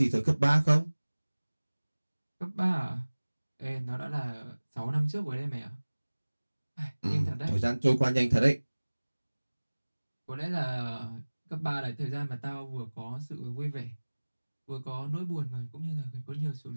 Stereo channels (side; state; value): both; inverted; correlation -1.00